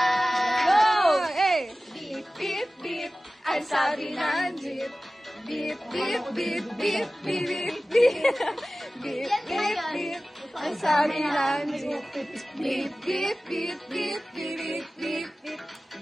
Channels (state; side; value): normal; both; correlation 0.96